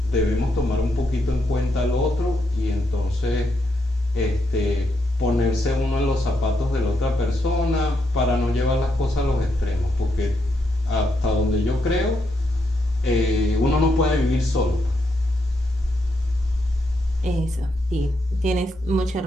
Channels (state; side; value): normal; both; correlation 0.80